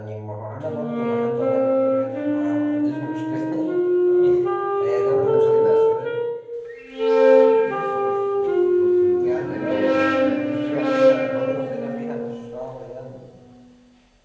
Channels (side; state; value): both; identical; correlation 1.00